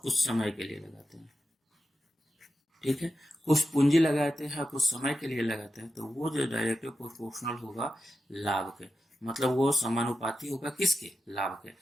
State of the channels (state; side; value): normal; both; correlation 0.91